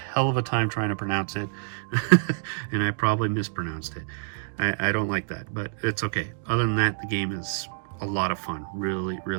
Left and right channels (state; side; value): silent; left; digital silence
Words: of a time trying to pronounce it, and I probably mispronounced it. I don't like that, but it's okay. Other than that, the game is a lot of fun. Really,